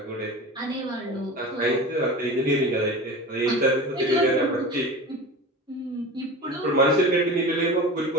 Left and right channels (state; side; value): normal; both; correlation 0.32